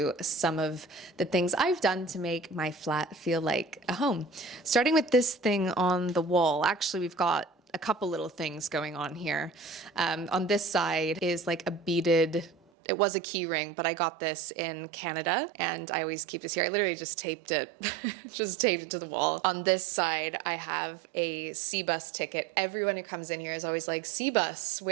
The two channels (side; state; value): left; drops out; at 12.6 s